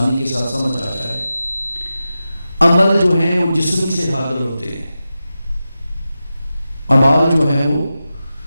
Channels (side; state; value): both; inverted; correlation -0.92